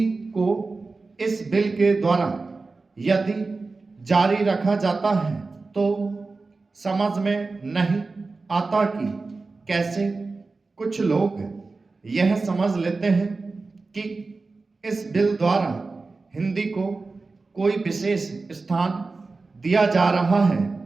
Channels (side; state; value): left; quieter; 3.8 dB